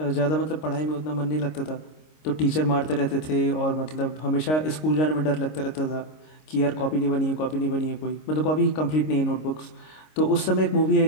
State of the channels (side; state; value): right; late; 26 ms